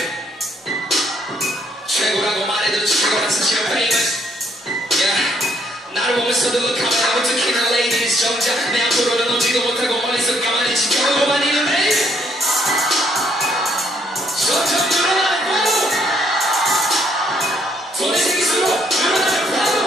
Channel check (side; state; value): both; normal; correlation 0.69